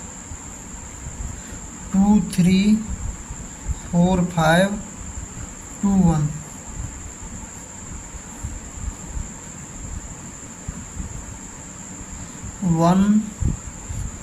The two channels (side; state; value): both; identical; correlation 1.00